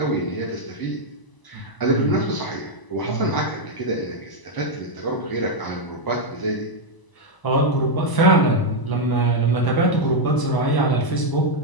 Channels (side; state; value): right; late; 1.0 ms